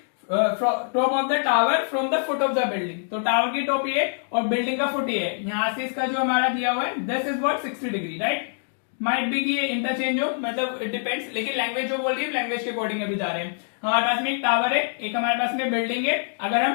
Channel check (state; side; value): silent; right; digital silence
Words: top of the tower from the foot of the building। तो टावर की टॉप ये और बिल्डिंग का फुट ये है। यहां से इसका जो हमारा दिया हुआ है, this is what 60 degree, right. Might be कि ये इंटरचेंज हो, मतलब इट डिपेंड्स, लेकिन लैंग्वेज जो बोल रही है लैंग्वेज के अकॉर्डिंग अभी जा रहे हैं। हमारे पास में एक टावर है, एक हमारे पास में बिल्डिंग है। अगर